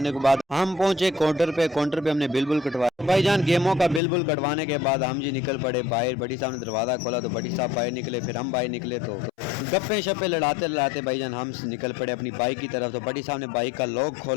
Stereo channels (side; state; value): right; drops out; at 4.0 s